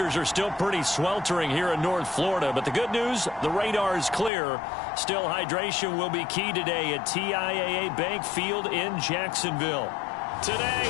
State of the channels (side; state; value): right; drops out; at 4.3 s